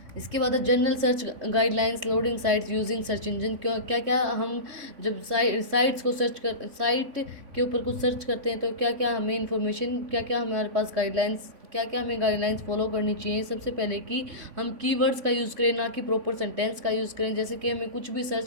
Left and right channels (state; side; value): late; left; 3.5 ms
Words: इसके बाद general search guidelines loading sites using search engine. क्यों क्या क्या हम जब साइट्स को साइट के ऊपर कुछ सर्च करते हैं तो क्या क्या हमें इन्फॉर्मेशन, क्या क्या हमारे पास गाइडलाइंस, क्या क्या हमें गाइडलाइंस फॉलो करनी चाहिए। सबसे पहले कि हम कीवर्ड्स का यूज़ करें, ना कि प्रॉपर सेंटेंस का यूज़ करें। जैसे कि हमें कुछ भी